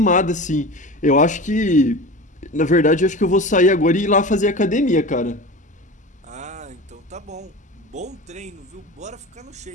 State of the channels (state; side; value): normal; both; correlation 0.31